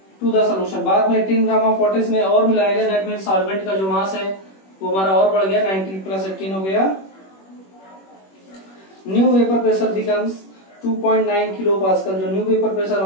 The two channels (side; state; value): right; late; 21 ms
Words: to the solution, बाद में 18 ग्राम ऑफ वाटर इसमें और मिलाया गया, दैट मीन सॉल्वेंट का जो मास है वो हमारा और बढ़ गया, 19 प्लस 18 हो गया। New vapour pressure becomes 2.9 kilo pascal. जो न्यू वेपर प्रेशर